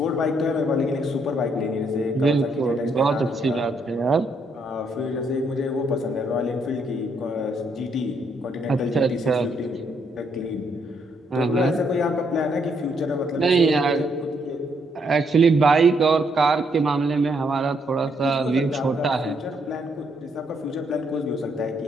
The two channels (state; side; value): normal; both; correlation 0.73